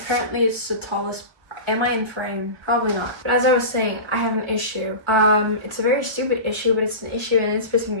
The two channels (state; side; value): late; left; 1.2 ms